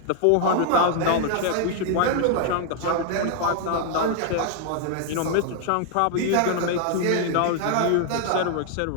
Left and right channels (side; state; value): both; different; correlation 0.00